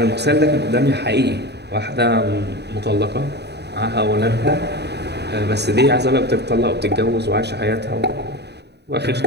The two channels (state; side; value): late; left; 0.49 ms